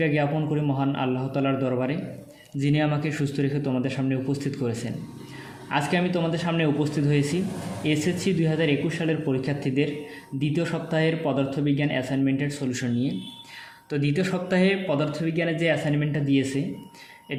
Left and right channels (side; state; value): both; identical; correlation 1.00